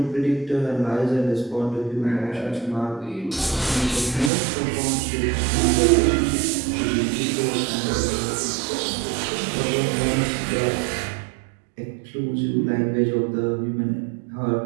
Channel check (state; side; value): drops out; left; at 4.3 s